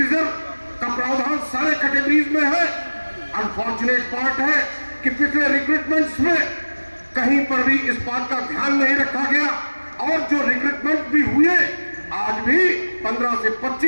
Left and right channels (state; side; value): inverted; both; correlation -1.00